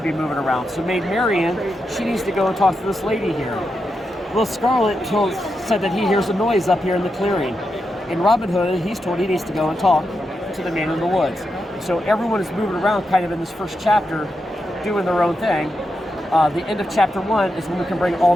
be moving around. So Maid Marian, she needs to go and talk to this lady here. Will Scarlet said that he hears a noise up here in the clearing. In Robin Hood, he's told he needs to go and talk to the man in the woods. So everyone is moving around kind of in this first chapter, doing their own thing. The end of chapter 1 is when we can bring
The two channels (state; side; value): normal; both; correlation 0.86